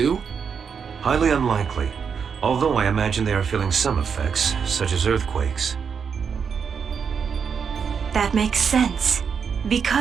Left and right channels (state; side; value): quieter; left; 6.5 dB